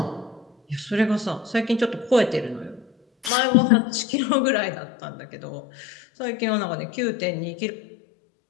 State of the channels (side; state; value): right; drops out; at 3.3 s